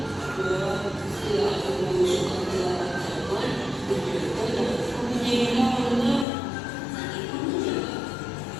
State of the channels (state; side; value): drops out; right; at 6.2 s